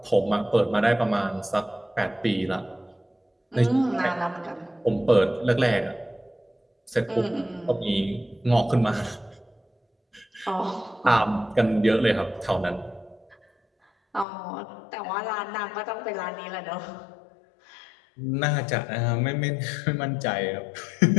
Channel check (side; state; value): right; drops out; at 14.2 s